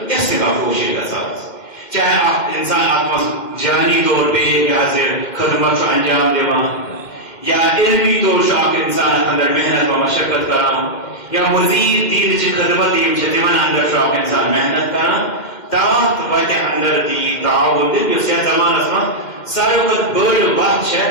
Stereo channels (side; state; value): right; late; 2.1 ms